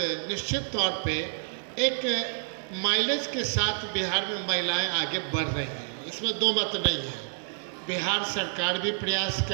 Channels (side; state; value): left; silent; digital silence